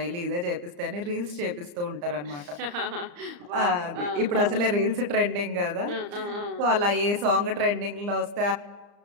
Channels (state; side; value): late; left; 34 ms